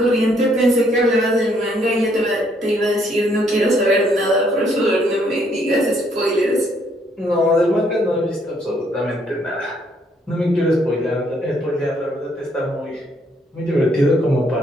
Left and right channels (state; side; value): normal; both; correlation 0.69